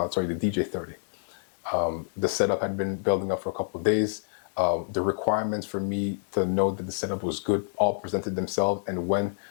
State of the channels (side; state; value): right; silent; digital silence